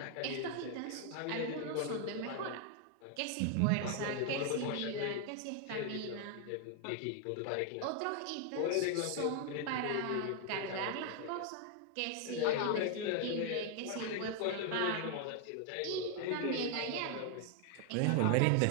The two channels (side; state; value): both; different; correlation 0.00